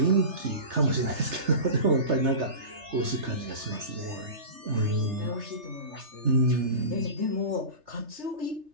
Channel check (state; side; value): late; left; 3.3 ms